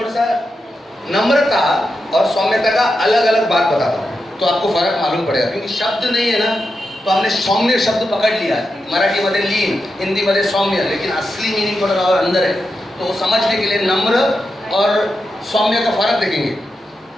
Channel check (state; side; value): normal; both; correlation 0.88